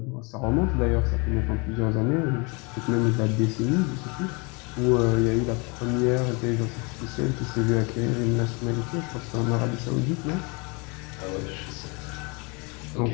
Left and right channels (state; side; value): quieter; right; 30.2 dB